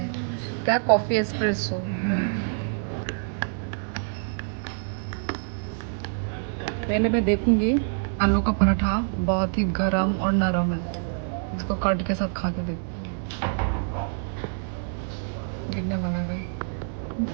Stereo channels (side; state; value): left; silent; digital silence